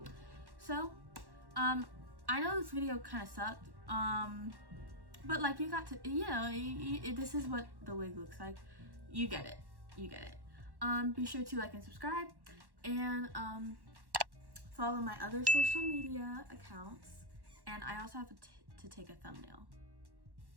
So I know this video kind of sucked, but like you got to, you know, this is what the wig looks like. You get it. You get it. Be sure to like and subscribe and follow my other social media accounts. And I also have to take a thumbnail.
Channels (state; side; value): late; left; 1.1 ms